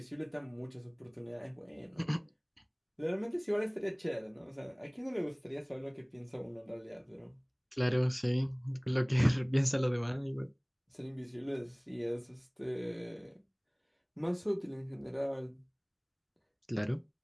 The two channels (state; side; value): identical; both; correlation 1.00